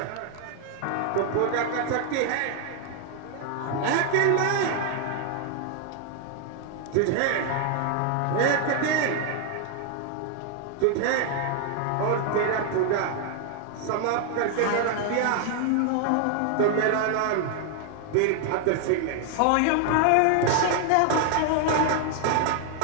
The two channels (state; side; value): different; both; correlation 0.00